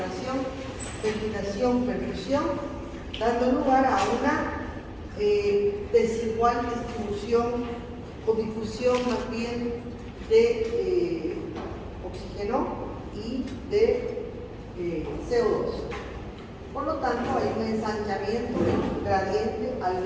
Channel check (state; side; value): identical; both; correlation 1.00